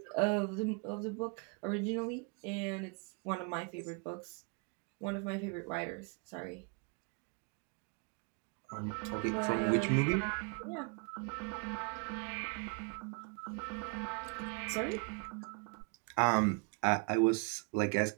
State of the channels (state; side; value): quieter; left; 35.7 dB